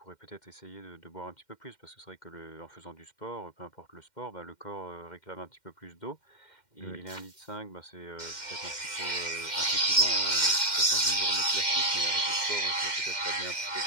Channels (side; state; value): right; late; 2.1 ms